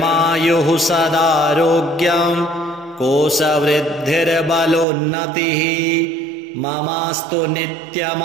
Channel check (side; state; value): left; drops out; at 4.9 s